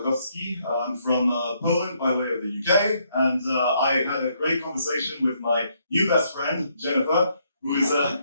I'm from Poland by way of the UK, and I had a great conversation with my new best friend, Jennifer, who is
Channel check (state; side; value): inverted; both; correlation -0.73